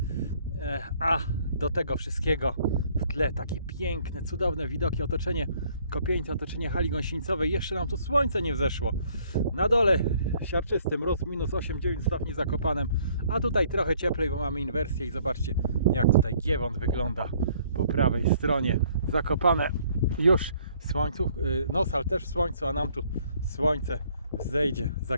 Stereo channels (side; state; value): both; inverted; correlation -0.62